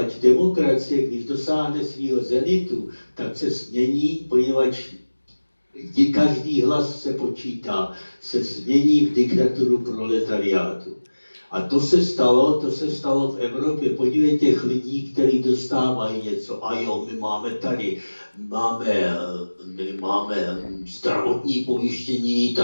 demokracie, když dosáhne svého zenitu, tak se změní, poněvadž každý hlas se počítá, se změní v diktaturu proletariátu. A to se stalo v Evropě. Podívejte těch lidí, kteří dostávají něco. A jo, my máme zdravotní pojištění,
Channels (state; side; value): inverted; both; correlation -1.00